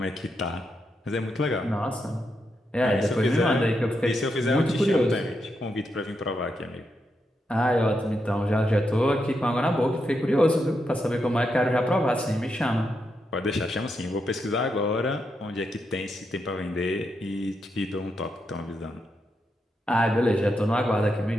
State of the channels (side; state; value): both; normal; correlation 0.83